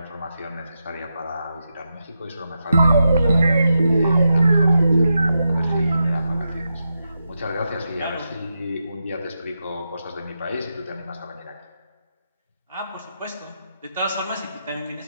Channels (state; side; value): inverted; both; correlation -0.87